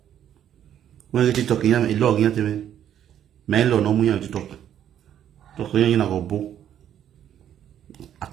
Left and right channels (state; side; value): quieter; left; 10.2 dB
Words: When you TikTok, you have a log in me. Mail no money on TikTok. TikTok, you na go bo. I